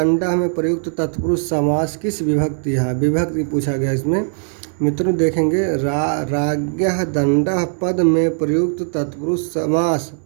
में प्रयुक्त तत्पुरुष समास किस विभक्ति है? विभक्ति पूछा गया इसमें मित्रों। देखेंगे राग्यः दंडः पद में प्रयुक्त तत्पुरुष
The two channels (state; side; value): silent; left; 66 dB below the other